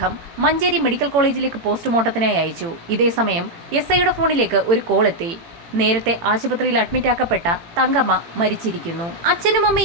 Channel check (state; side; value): late; left; 18 ms